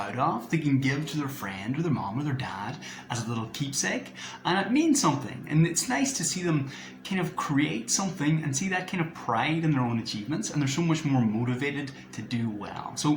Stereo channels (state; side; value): identical; both; correlation 1.00